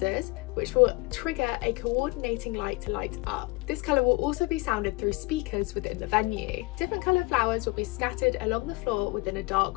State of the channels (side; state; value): right; quieter; 24.7 dB